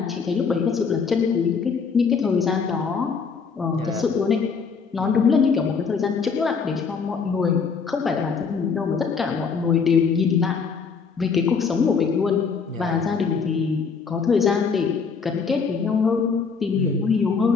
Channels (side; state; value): right; quieter; 5.5 dB